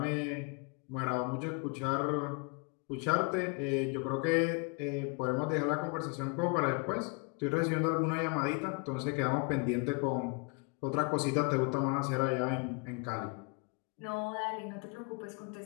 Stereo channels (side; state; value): right; quieter; 33.7 dB